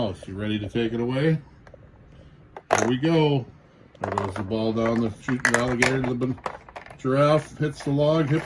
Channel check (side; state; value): both; identical; correlation 1.00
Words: You ready to take it away? Here we go. There goes the ball down the chute. The alligator to the giraffe hits the log.